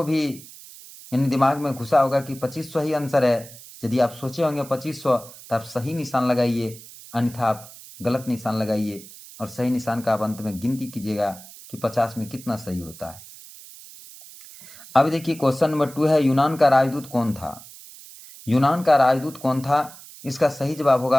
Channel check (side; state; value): right; noise; hiss, 18 dB below the sound